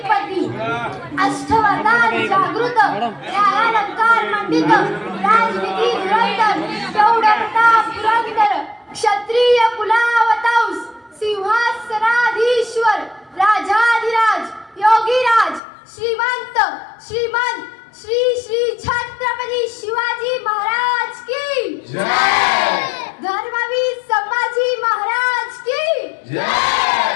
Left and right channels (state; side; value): drops out; right; at 15.6 s